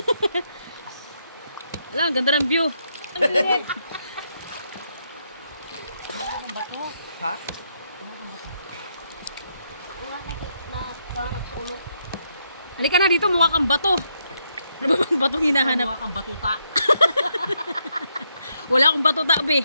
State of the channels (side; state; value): both; inverted; correlation -0.77